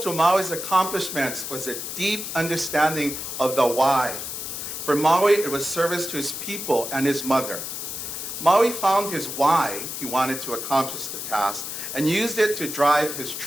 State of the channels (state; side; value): noise; left; hiss, 6 dB below the sound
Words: Maui's accomplishments was a deep understanding of the why. For Maui, it was service to his people and his mother. Maui found his why he wanted to accomplish the task and used it to drive his